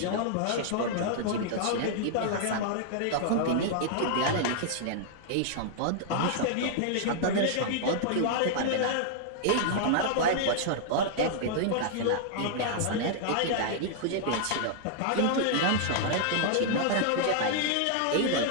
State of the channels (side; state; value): both; different; correlation -0.01